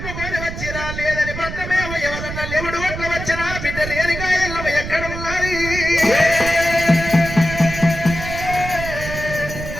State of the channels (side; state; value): right; noise; rumble, 7 dB below the sound